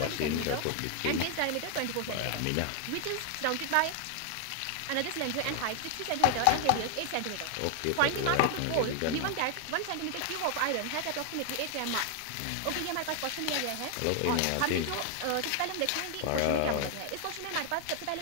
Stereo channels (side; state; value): both; different; correlation 0.00